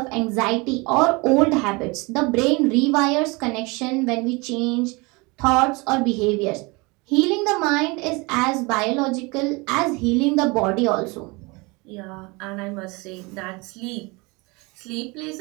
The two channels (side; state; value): left; quieter; 26.4 dB